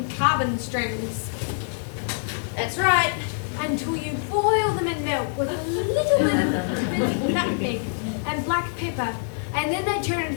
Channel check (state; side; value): silent; right; digital silence